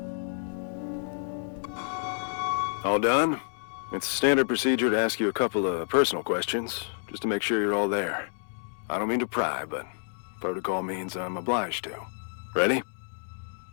All done? It's standard procedure to ask you a couple of personal questions, just to make sure you're all there. I don't mean to pry, but protocol means I'm obliged to. Ready?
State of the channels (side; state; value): right; silent; 59 dB below the other